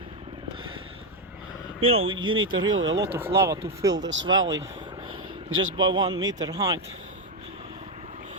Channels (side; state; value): both; normal; correlation 0.05